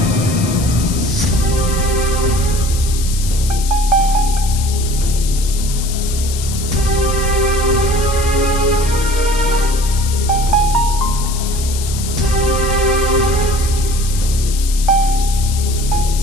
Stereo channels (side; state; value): left; noise; hiss, 9 dB below the sound